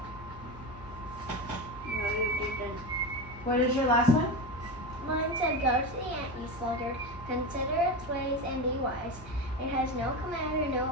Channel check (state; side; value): normal; both; correlation 0.21